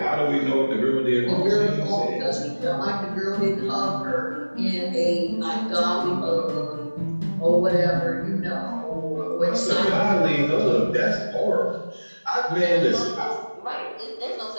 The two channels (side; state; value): both; inverted; correlation -1.00